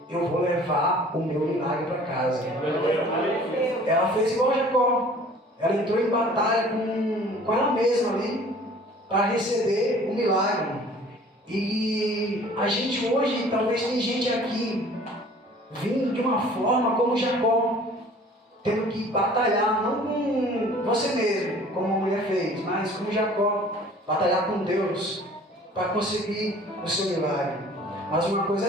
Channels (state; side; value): normal; both; correlation 0.50